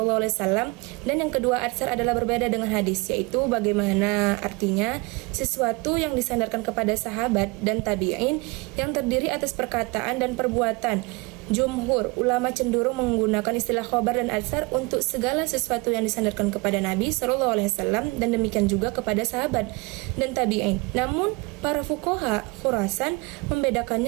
dan yang kedua atsar adalah berbeda dengan hadis, yaitu bagaimana artinya sesuatu yang disandarkan kepada sahabat dan tabi'in yang terdiri atas perkataan dan perbuatan. Jumhur ulama cenderung menggunakan istilah khobar dan atsar untuk segala sesuatu yang disandarkan kepada Nabi SAW dan demikian juga kepada sahabat dan tabi'in. Namun para fuqaha Khurasan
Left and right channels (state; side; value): quieter; left; 26.3 dB